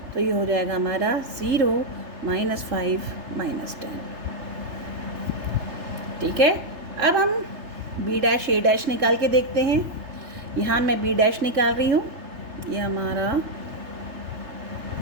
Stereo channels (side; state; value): left; late; 3.3 ms